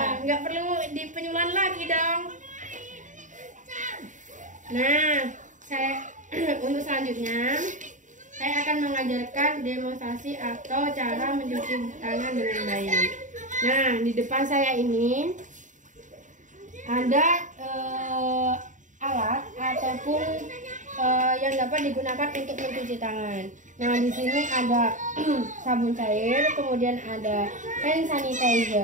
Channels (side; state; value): left; late; 0.36 ms